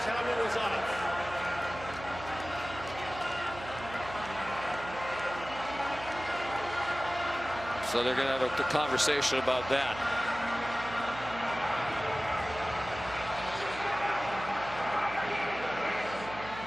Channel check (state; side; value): noise; right; hum, 13 dB below the sound